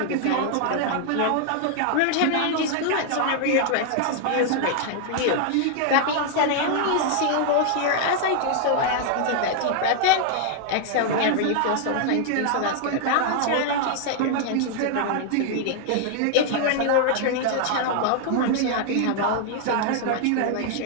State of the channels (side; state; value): both; different; correlation 0.00